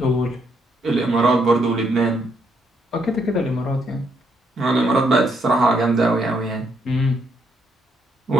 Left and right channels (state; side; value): normal; both; correlation 0.74